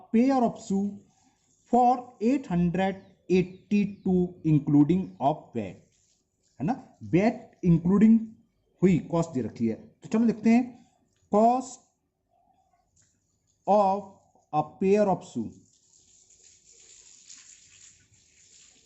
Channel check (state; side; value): identical; both; correlation 1.00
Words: pair of shoe for 882 including of VAT, है ना, बैट इंक्लूडिंग हुई कॉस्ट दे रखी है। तो चलो लिखते हैं cost of a pair of shoe,